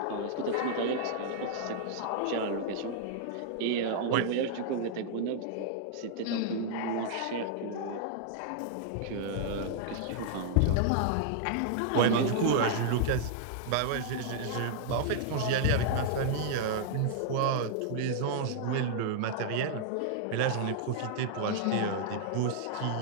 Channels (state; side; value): different; both; correlation -0.01